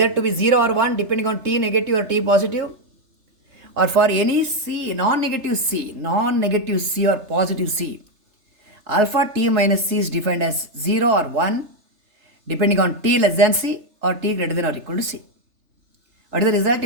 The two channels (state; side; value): late; left; 3.3 ms